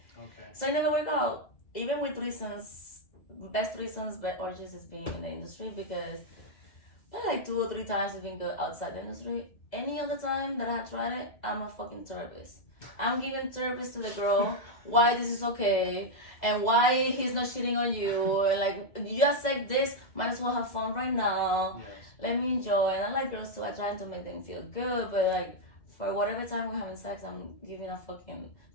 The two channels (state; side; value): late; right; 2.0 ms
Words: Okay. So it never worked out. Even with reasons, best reasons, but orgies is being in the industry, because like 2 or 3 times it's been good outside the industry. Any other time that I had tried it, I'm a fucking therapist. I'm giving therapist to the girl why this is okay and why he's not cheating on you, and like, you just like this, might as well have fun right now. Yes. Let me enjoy. And I like girls too. I try to make them feel good, but like for whatever time we're having sex, I'm giving a fucking